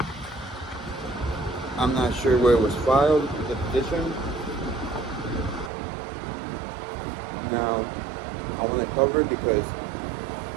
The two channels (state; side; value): drops out; left; at 5.7 s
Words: I'm not sure where it was filed, the petition. Now, I want to cover it because